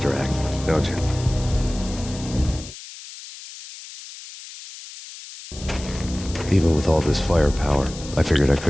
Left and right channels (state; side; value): noise; left; hiss, 14 dB below the sound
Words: act, don't you? Even with all this firepower, I figured I